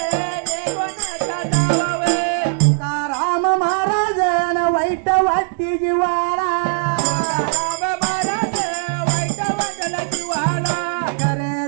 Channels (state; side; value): silent; left; digital silence